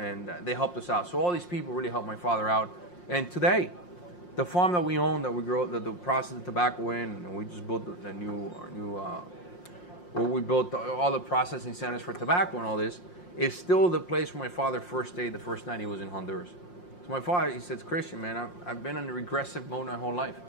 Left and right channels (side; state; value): right; late; 5.6 ms